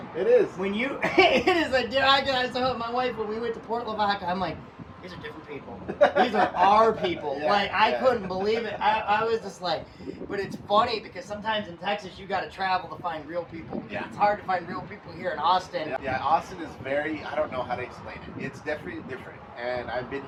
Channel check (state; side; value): identical; both; correlation 1.00